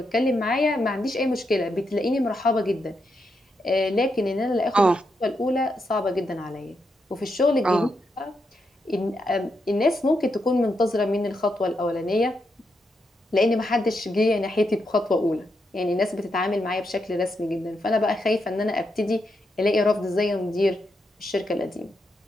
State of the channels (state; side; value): normal; both; correlation 0.83